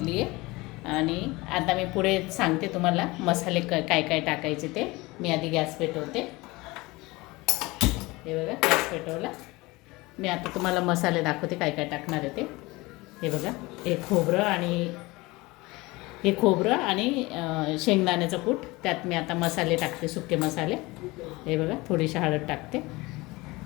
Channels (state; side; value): quieter; right; 22.2 dB